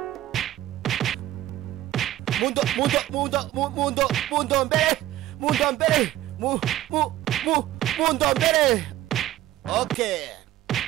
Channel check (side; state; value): left; quieter; 14.4 dB